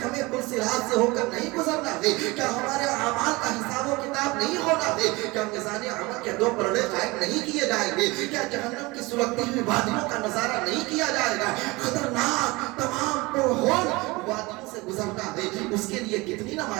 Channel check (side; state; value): left; quieter; 23.2 dB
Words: ہمیں پرصراط سے ہو کر نہیں گزرنا ہے؟ کیا ہمارے اعمال کا حساب و کتاب نہیں ہونا ہے؟ کیا میزان عمل کے 2 پلڑے نہیں کیے جائیں گے؟ کیا جہنم کی سلگتی ہوئی وادیوں کا نظارہ نہیں کیا جائے گا؟ خطرناک تمام پرہول وادیوں سے گزرنا ہے، اس کے لیے کتنی